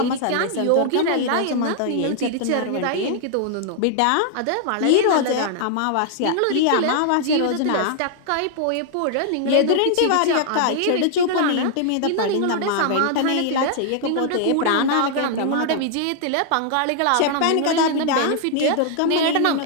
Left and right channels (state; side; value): different; both; correlation 0.00